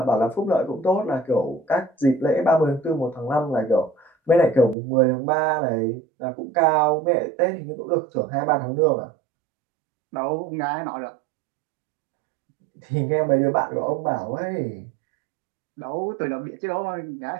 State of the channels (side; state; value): left; drops out; at 4.8 s